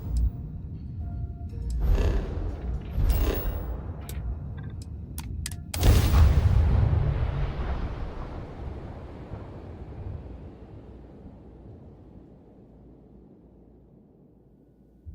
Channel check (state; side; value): identical; both; correlation 1.00